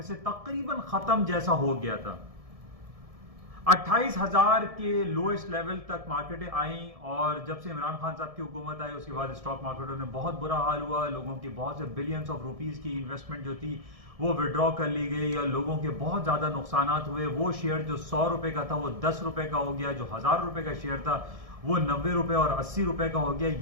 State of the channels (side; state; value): left; late; 1.7 ms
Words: से तकरीबन खत्म जैसा हो गया था। 28,000 के लोएस्ट लेवल तक मार्केटें आई और जब से इमरान खान साहब की हुकूमत आई उसके बाद स्टॉक मार्केटों में बहुत बुरा हाल हुआ। लोगों की बहुत से बिलियंस ऑफ रुपीस की इन्वेस्टमेंट जो थी वो विड्रॉ कर ली गई और लोगों के बहुत ज्यादा नुकसान हुए। वो शेयर जो 100 रुपए का था वो 10 रुपए का हो गया, जो 1000 रुपए का शेयर था वो 90 रुपए और 80 रुपए का हो गया।